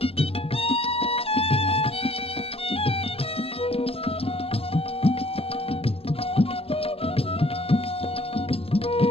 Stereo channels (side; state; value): right; late; 0.28 ms